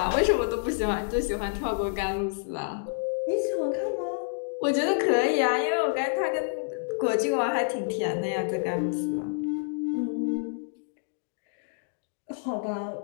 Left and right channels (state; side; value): silent; right; digital silence